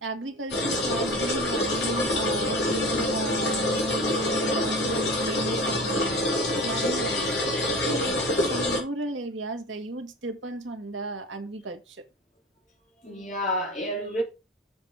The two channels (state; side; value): normal; both; correlation 0.35